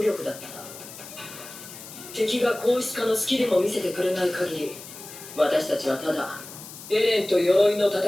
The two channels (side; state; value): left; noise; hiss, 14 dB below the sound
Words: だった敵が硬質化のスキルも見せてくれない限り私たちはただエレンと鎧の戦